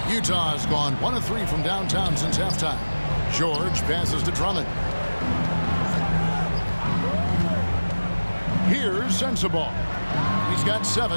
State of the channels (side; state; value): both; inverted; correlation -1.00